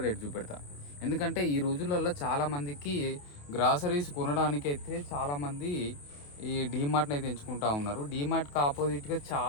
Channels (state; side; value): late; right; 28 ms